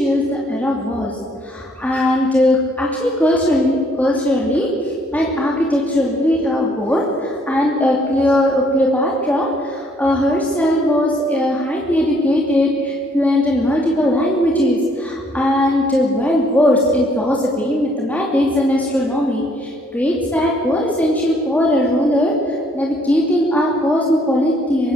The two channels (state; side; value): normal; both; correlation 0.65